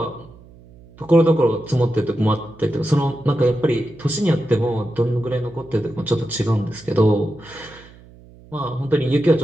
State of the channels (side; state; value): right; noise; hum, 23 dB below the sound